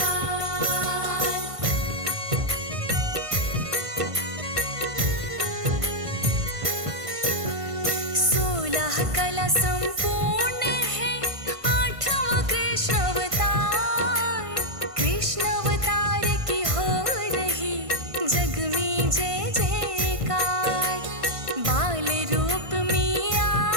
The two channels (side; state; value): left; late; 1.5 ms